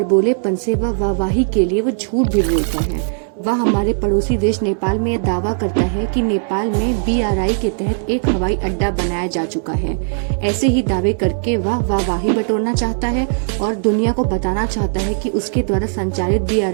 से वह वाहवाही के लिए वो झूठ भी बोलता है। वह हमारे पड़ोसी देश नेपाल में यह दावा करता है कि नेपाल में BRI के तहत एक हवाई अड्डा बनाया जा चुका है। ऐसे ही दावे करके वह वाहवाही बटोरना चाहता है और दुनिया को बताना चाहता है कि उसके द्वारा संचालित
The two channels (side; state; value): left; silent; digital silence